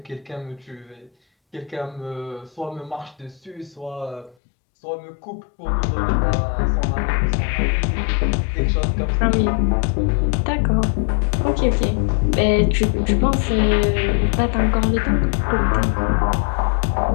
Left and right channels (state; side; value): drops out; right; at 4.4 s